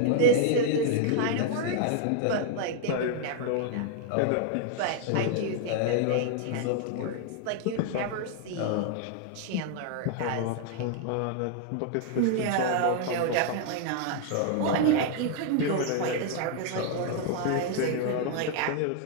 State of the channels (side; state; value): both; different; correlation 0.00